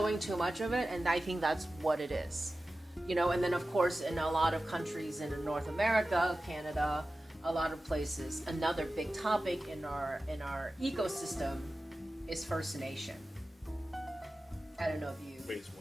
too much of it, and I think that's what it is. And then of course in a lot of countries in North America, Canada, a lot of places, another big topic in our ecosystem is First Nation. I don't know if you Phase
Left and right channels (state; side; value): normal; both; correlation 0.95